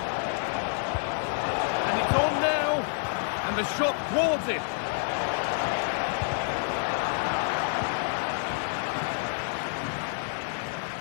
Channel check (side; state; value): right; silent; 59 dB below the other